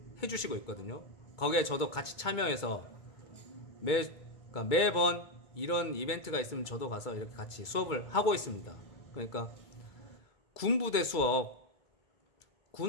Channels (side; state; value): right; late; 2.2 ms